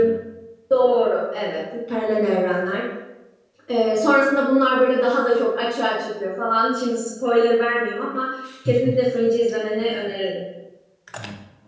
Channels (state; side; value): identical; both; correlation 1.00